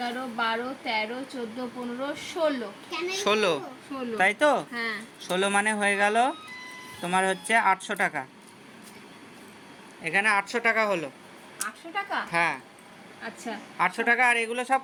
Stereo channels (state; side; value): identical; both; correlation 1.00